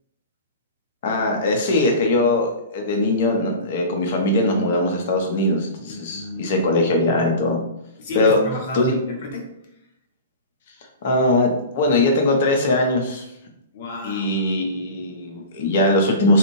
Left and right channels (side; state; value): both; inverted; correlation -0.34